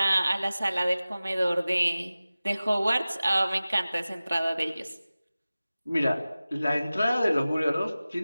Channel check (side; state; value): both; inverted; correlation -0.97